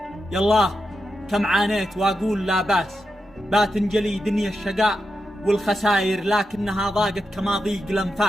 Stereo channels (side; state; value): both; normal; correlation 0.87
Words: يالله كم عانيت واقول لا باس، باتنجلي دنيا الشقاء والخساير، لكنها ضاقت كما ضيق